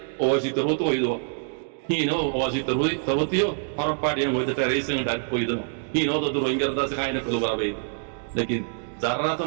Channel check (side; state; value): left; silent; digital silence